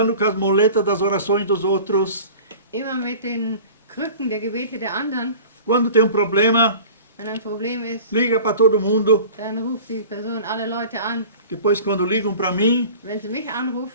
com as moletas das orações dos outros. immer mit den Krücken der Gebete der anderen. Quando tem um problema, Wenn ein Problem ist, liga para todo mundo. dann ruft die Person alle Leute an. Depois, quando ligam para mim, Wenn sie mich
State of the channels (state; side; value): inverted; both; correlation -0.41